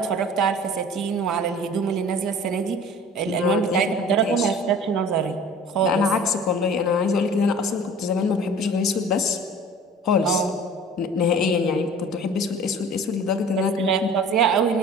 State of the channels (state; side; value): normal; both; correlation 0.44